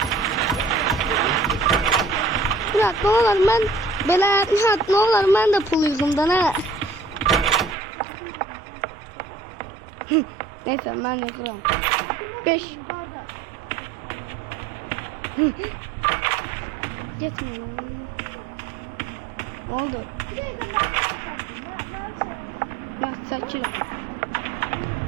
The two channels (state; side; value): drops out; left; at 7.8 s